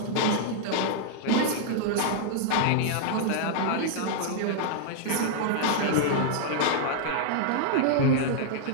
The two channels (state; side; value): different; both; correlation -0.01